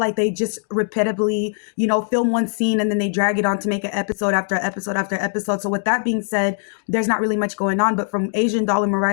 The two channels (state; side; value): silent; right; 58 dB below the other